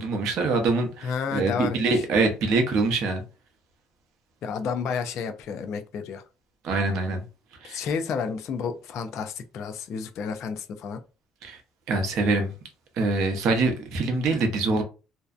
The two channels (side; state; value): both; normal; correlation 0.60